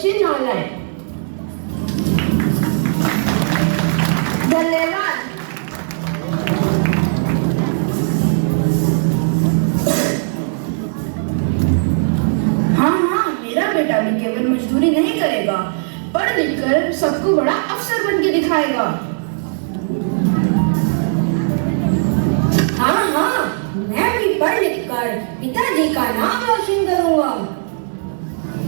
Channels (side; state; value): left; silent; digital silence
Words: ना लाएं। धन्यवाद। हाँ, मेरा बेटा भी केवल मजदूरी नहीं करेगा, पढ़ लिख कर सबको बड़ा अफसर बन के दिखाएगा। हाँ, मैं भी पढ़ लिख कर पिताजी का नाम रोशन करूंगा।